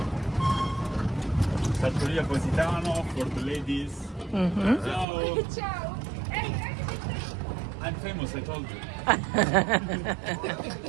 Trattoria Positano for the ladies. Ciao. Ciao. I'm famous, I told you.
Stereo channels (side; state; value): left; drops out; at 5.1 s